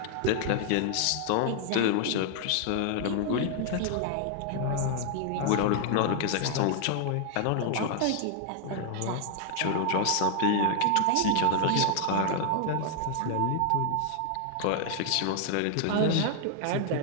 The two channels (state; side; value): different; both; correlation 0.00